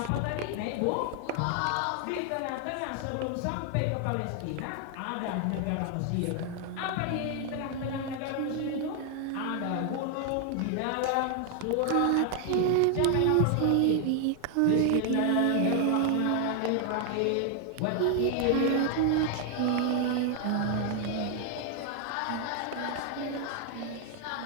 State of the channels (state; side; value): different; both; correlation 0.00